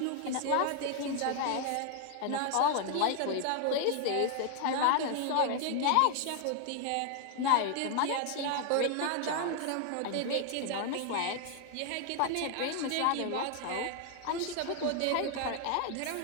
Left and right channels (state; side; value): different; both; correlation 0.00